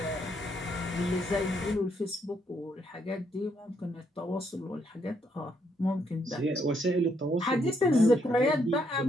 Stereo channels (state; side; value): normal; both; correlation 0.74